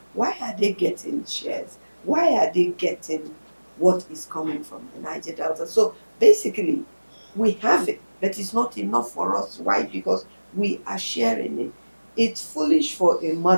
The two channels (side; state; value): both; inverted; correlation -1.00